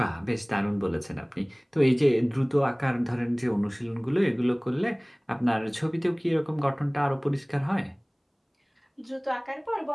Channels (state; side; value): identical; both; correlation 1.00